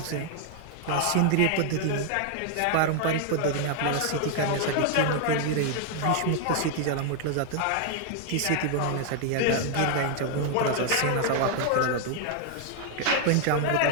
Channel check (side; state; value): both; different; correlation 0.00